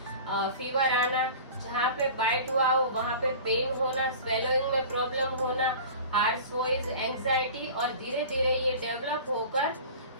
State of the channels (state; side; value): inverted; both; correlation -0.38